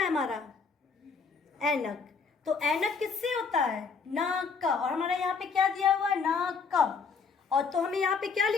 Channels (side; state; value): right; quieter; 5.2 dB